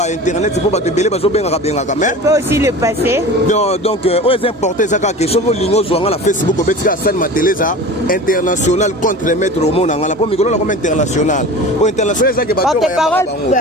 internet pour ba te belé bazo benga benga quand même tu peux aussi le passer donc aux importés ça ka question ko lingo zo ngala Facebook ko betika san mateleza international contre maître au monde ngala po mikolo comme international au international ça que ba porte-parole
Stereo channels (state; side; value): normal; both; correlation 0.35